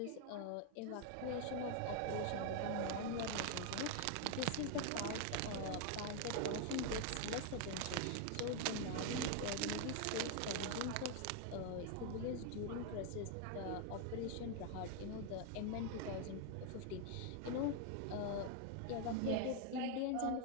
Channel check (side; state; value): both; different; correlation 0.00